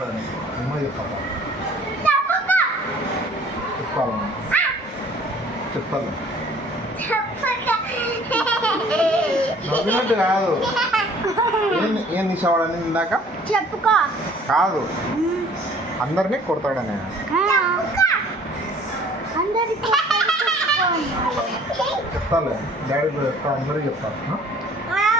అమ్మ చెప్తాపా చెప్పాలి చెప్తాను నవ్వినట్టు కాదు ఏం తీసేవాడని ఇందాక చెప్పుకో కాదు అందరినీ కొడతాడని చెప్తాలే డాడీ చెప్తా అందరికీ చెప్తాను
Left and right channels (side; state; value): both; normal; correlation 0.53